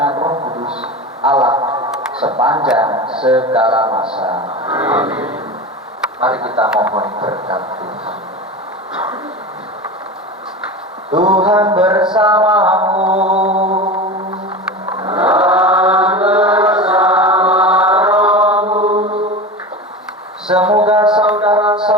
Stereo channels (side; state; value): both; normal; correlation 0.28